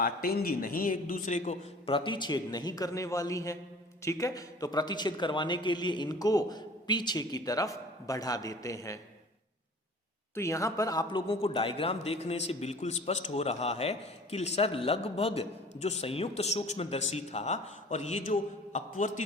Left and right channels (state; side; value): normal; both; correlation 0.46